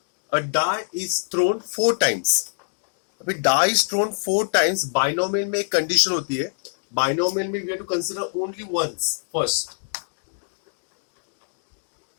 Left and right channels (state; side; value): silent; right; digital silence